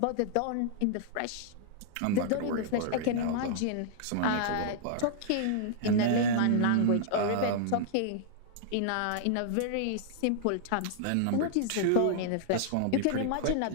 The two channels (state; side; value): different; both; correlation -0.01